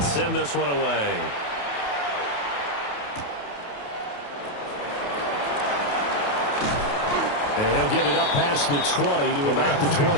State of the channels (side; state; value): right; late; 28 ms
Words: send this one away. And he'll get it up past the 20 to about the